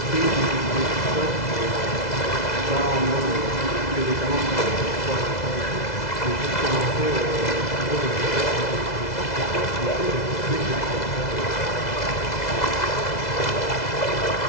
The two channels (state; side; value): late; right; 2.0 ms